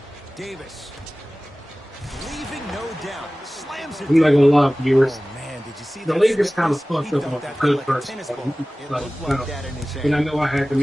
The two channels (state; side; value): normal; both; correlation 0.98